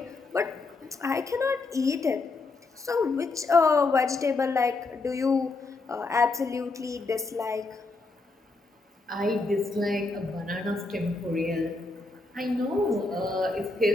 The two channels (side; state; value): right; quieter; 3.5 dB